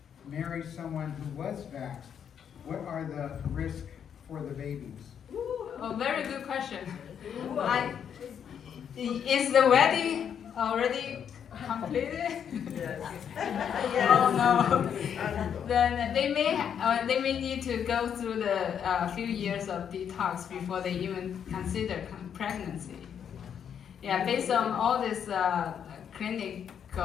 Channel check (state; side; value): quieter; right; 8.2 dB